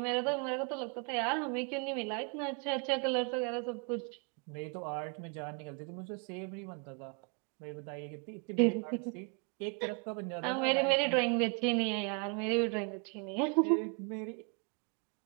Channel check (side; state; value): left; quieter; 36.7 dB